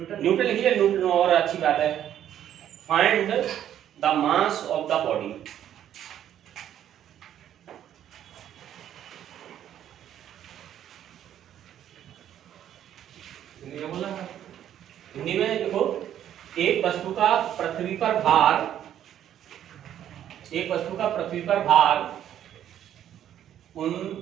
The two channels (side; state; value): left; quieter; 10.7 dB